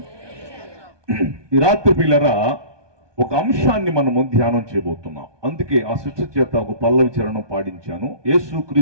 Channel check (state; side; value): late; left; 1.2 ms